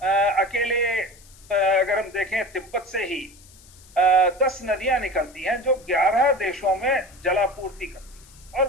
अकेले अगर हम देखें तिब्बत से ही 10 नदियां निकलती हैं जो 11 देशों में जलापूर्ति करती हैं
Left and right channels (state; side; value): noise; left; hiss, 24 dB below the sound